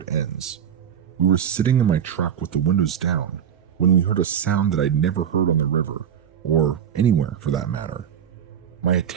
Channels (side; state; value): left; quieter; 8.8 dB